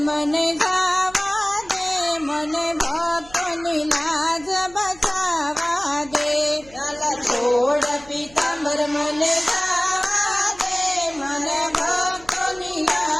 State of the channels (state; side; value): noise; right; hum, 24 dB below the sound